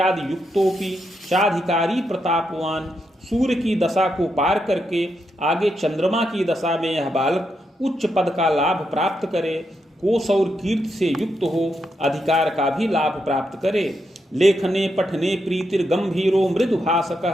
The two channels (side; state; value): both; normal; correlation 0.82